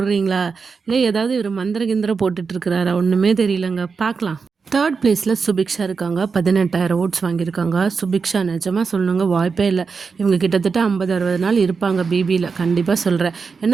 இல்லை ஏதாவது இவர் மந்திர கிந்திரம் போட்டுட்ருக்கிறாரா? ஒன்றுமே தெரியலங்க. பார்க்கலாம். 3rd பிளேஸில் சுபிக்ஷா இருக்காங்க. 18,000 ஓட்ஸ் வாங்கியிருக்காங்க. சுபிக்ஷா நிஜமாக சொல்லணுங்க, வாய்ப்பே இல்லை. இவங்க கிட்டத்தட்ட 50-60 நாள் இருப்பாங்க பிபியில். கண்டிப்பாக சொல்கிறேன்.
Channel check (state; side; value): quieter; left; 5.1 dB